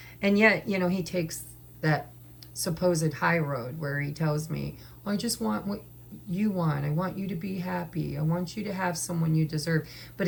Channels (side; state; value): both; identical; correlation 1.00